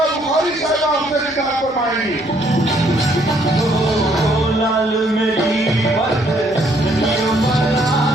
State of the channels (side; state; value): both; normal; correlation 0.67